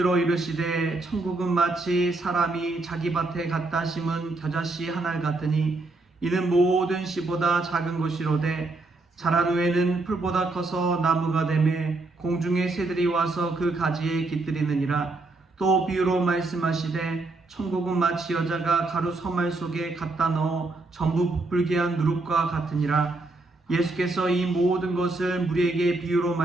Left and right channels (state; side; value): quieter; left; 3.2 dB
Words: 이르시되 천국은 마치 사람이 자기 밭에 갖다 심은 겨자씨 한 알 같으니 이는 모든 씨보다 작은 것이로되 자란 후에는 풀보다 커서 나무가 되매 공중의 새들이 와서 그 가지에 깃들이느니라. 또 비유로 말씀하시되 천국은 마치 여자가 가루 서말 속에 갖다 넣어 전부 부풀게 한 누룩과 같으니라. 예수께서 이 모든 것을 무리에게 비유로